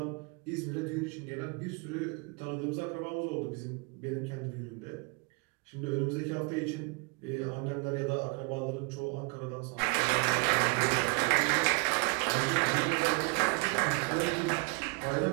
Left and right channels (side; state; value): left; quieter; 30.2 dB